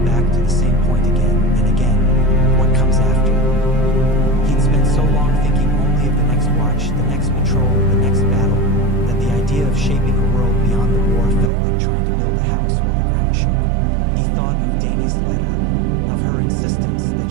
back to the same point again and again. What comes after? He'd spent so long thinking only of the next watch, the next patrol, the next battle, that the idea of shaping a world beyond the war felt like trying to build a house while the ground shook. He thought of Dany's letter, of her insistence that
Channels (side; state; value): left; drops out; at 11.5 s